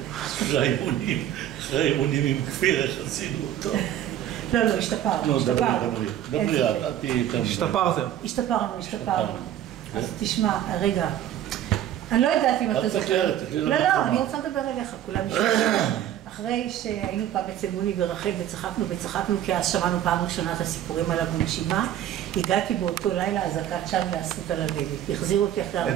אחרי האימונים עם כפיר, איך עשינו אותו? לא, השתפרנו. דברי, את תהיי יותר... השתפרתם. השתפרנו. אז תשמע, רגע. אני לא יודעת אם אתה זוכר. לא, אני רוצה לדבר אליך, כולם נשמעו. אחרי שהיינו פעם אצל מוני ורחל וצחקנו כי אז שמענו פעם ראשונה את הסיפורים עליו בנשימה, הגעתי באותו לילה אזעקת שם לאסות על הדלת. החזירו אותי אחרי... את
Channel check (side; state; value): left; quieter; 11.4 dB